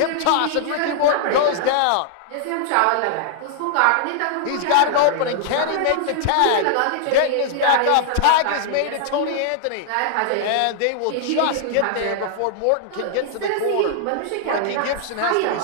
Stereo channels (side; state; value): both; different; correlation -0.01